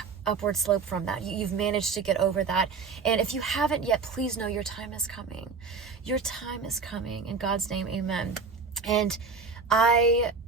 upward slope from that. You've managed to get over that, and if you haven't yet, please know your time is coming. Your time is coming. In God's name, amen. And I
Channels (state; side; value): quieter; left; 5.0 dB